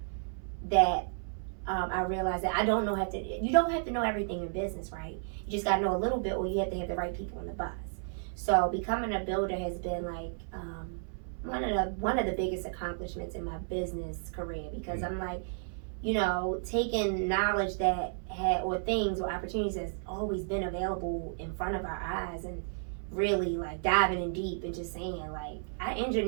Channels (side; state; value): left; silent; 56 dB below the other